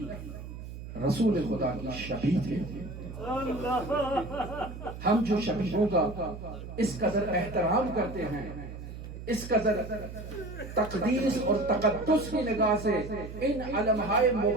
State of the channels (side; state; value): right; noise; hum, 11 dB below the sound